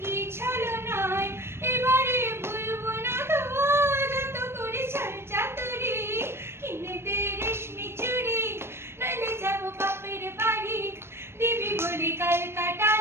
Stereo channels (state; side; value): late; left; 0.12 ms